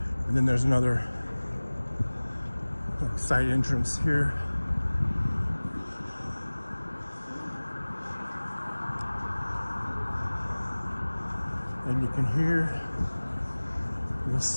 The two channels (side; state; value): both; inverted; correlation -1.00